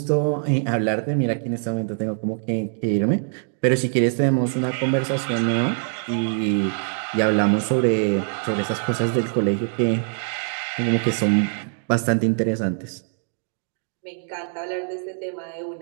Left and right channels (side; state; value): left; silent; 63 dB below the other